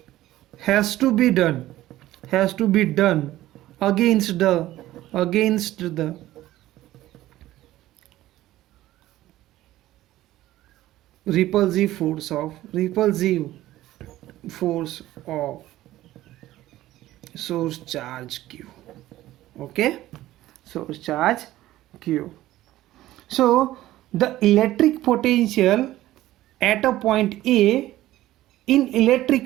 has to be done against the repulsive force of source charge q. Okay, source charge q. So the electric potential at a point A in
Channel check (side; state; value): left; quieter; 15.2 dB